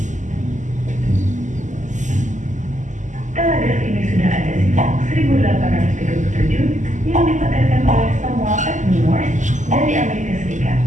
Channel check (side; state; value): left; late; 0.36 ms